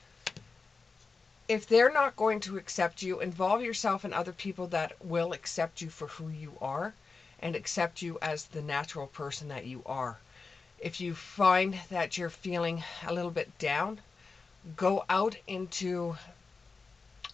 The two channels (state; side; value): quieter; right; 4.4 dB